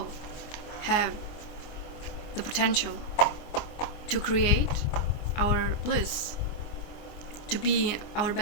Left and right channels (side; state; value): right; late; 24 ms